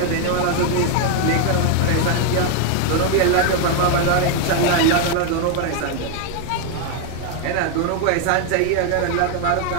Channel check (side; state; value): both; different; correlation 0.01